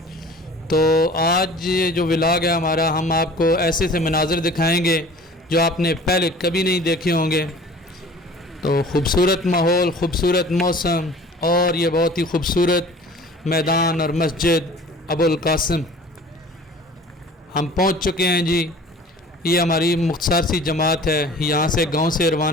تو آج یہ جو ولاگ ہے ہمارا، ہم آپ کو ایسے سے مناظر دکھائیں گے جو آپ نے پہلے کبھی نہیں دیکھے ہوں گے۔ تو خوبصورت ماحول، خوبصورت موسم اور یہ بہت ہی خوبصورت میدان اور مسجد ابو القاسم۔ ہم پہنچ چکے ہیں جی، یہ ہماری مختصر سی جماعت ہے، یہاں سے گاؤں سے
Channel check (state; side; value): normal; both; correlation 0.45